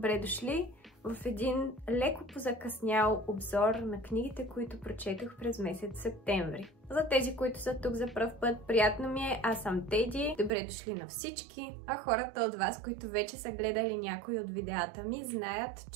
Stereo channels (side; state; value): left; drops out; at 10.5 s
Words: дошли в един леко позакъснял обзор на книгите, които прочетох през месец септември. За тези, които са тук за пръв път, приятно ми е, аз съм Теди, добре дошли на всички. А хората от вас, които вече са гледали някои от видеята ми, знаят,